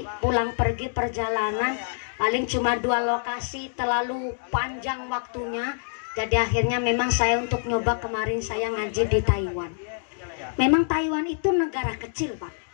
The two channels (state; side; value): silent; right; digital silence